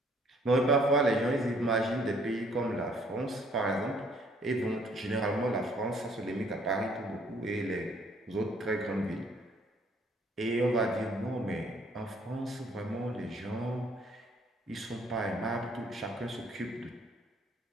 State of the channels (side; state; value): both; normal; correlation 0.62